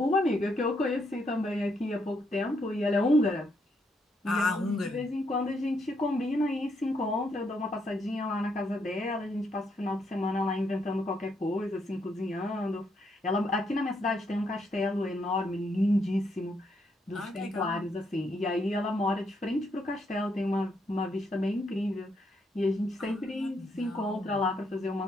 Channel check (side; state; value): both; normal; correlation 0.76